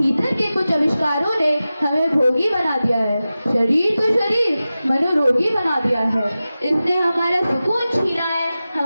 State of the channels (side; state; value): both; inverted; correlation -0.95